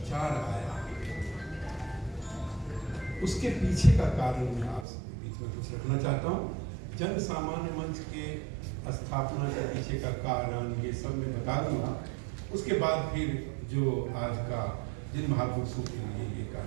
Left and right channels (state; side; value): drops out; left; at 4.9 s